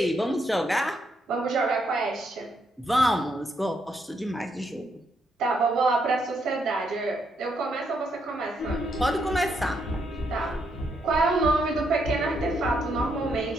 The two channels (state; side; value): normal; both; correlation 0.77